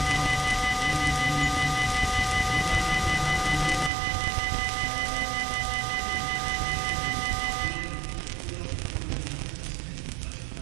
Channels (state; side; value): drops out; left; at 3.9 s